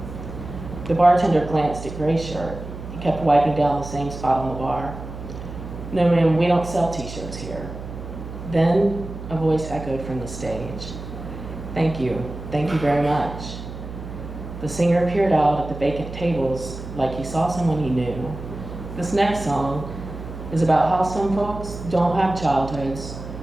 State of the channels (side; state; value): right; noise; hum, 10 dB below the sound